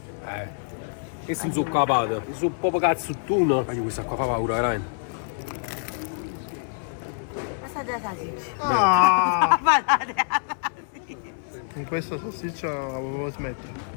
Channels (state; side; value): silent; right; 61 dB below the other